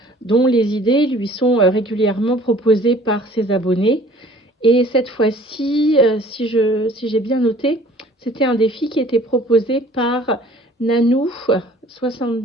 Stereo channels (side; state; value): both; normal; correlation 0.52